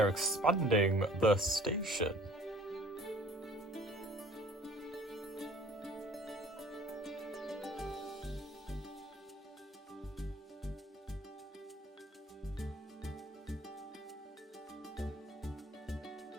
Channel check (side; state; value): both; normal; correlation 0.51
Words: expanding the station.